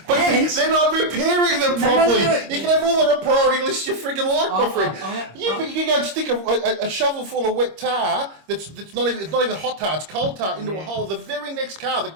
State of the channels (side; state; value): left; late; 26 ms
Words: not repairing them properly. No. You can have all the priority lists you freaking like, my friend. You can go and stick a shovel full of wet tar that's not even hot tar, it's cold tar into a hole. The very next car that